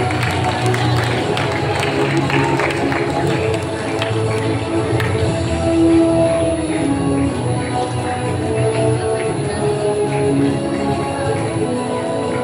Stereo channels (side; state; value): both; identical; correlation 1.00